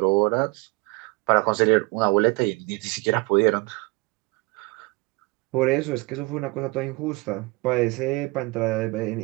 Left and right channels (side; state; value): left; quieter; 25.3 dB